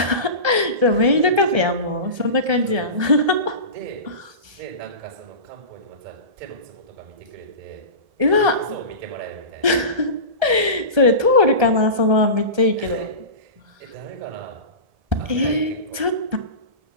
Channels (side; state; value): left; late; 1.3 ms